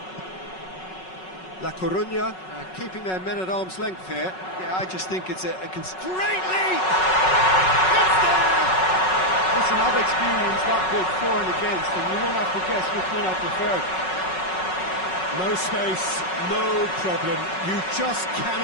La Coruña keeping their men at arm's length here. Yeah, I just think it's a Great lead! It's there! Listen, I've experienced that both for and against, and you won't have to guess which one I preferred. No space, no problem. You just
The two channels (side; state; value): right; late; 5.4 ms